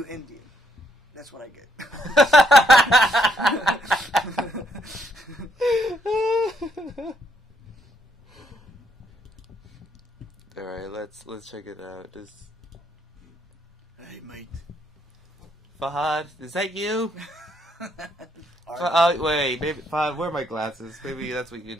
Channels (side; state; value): both; normal; correlation 0.73